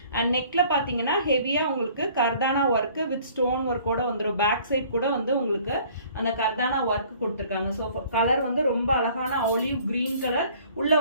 அண்ட் நெக்ல பாத்தீங்கன்னா ஹெவியா உங்களுக்கு கர்தானா ஒர்க் வித் ஸ்டோன் ஒர்க்கோட வந்துடும். பேக் சைட் கூட வந்து உங்களுக்கு அந்த கர்தானா ஒர்க் கொடுத்துருக்காங்க. ஸோ கலர் வந்து ரொம்ப அழகான ஆலிவ் கிரீன் கலர். உள்ள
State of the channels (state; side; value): inverted; both; correlation -0.54